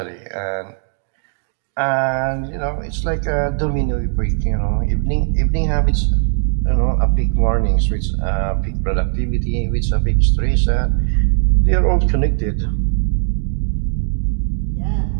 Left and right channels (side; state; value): left; silent; 64 dB below the other